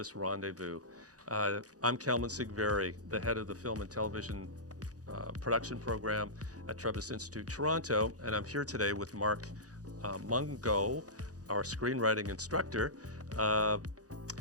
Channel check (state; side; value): late; left; 0.67 ms